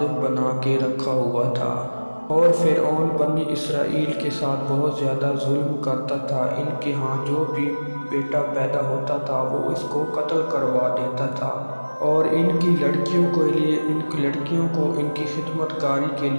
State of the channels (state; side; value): inverted; both; correlation -1.00